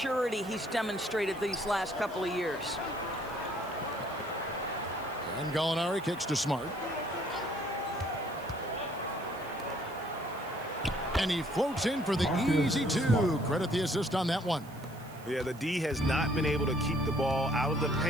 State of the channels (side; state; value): right; noise; hiss, 22 dB below the sound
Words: he's demonstrated these last couple of years. And Gallinari kicks to Smart. And he floats in for the easy two. Credit the assist on that one. Yeah, the D has not been able to keep the ball out of the